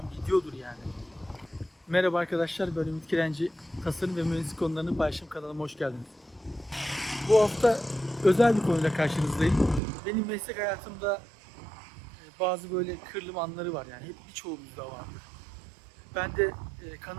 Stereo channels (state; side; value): drops out; left; at 9.8 s